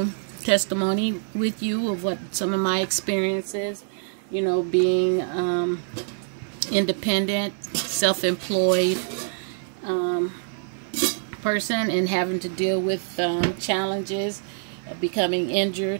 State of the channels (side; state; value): left; silent; 62 dB below the other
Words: testimony with you of what some of my experiences, you know, being independent, self-employed person, and having to deal with challenges of becoming